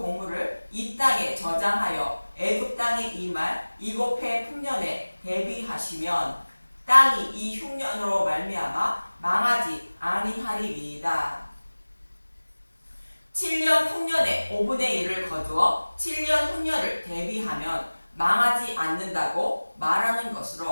이 땅에 저장하여 애굽 땅에 임할 7해 풍년에 대비하시면 땅이 이 흉년으로 말미암아 망하지 아니하리이다. 7년 풍년에 5분의 1을 거두어 7년 흉년을 대비하면 망하지 않는다고 말하는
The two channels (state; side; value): inverted; both; correlation -1.00